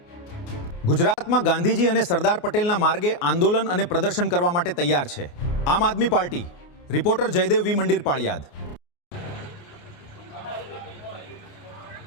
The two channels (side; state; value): right; late; 29 ms